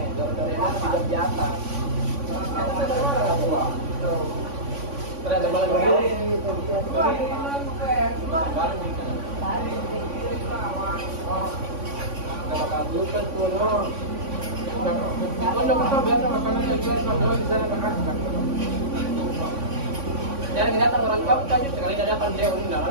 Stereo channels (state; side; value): late; left; 3.5 ms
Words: dari tidak biasa. Ternyata malah begini. Kalau kamu kan tuh no. Kalau kita biasa makanan yang jual jual di sana kan. Jangan datang orang kau tadi sekali datang dia undang